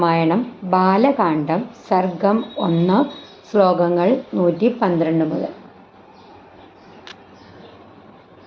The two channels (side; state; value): both; identical; correlation 1.00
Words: ബാലകാണ്ഡം സർഗം 1 ശ്ലോകങ്ങൾ 112 മുതൽ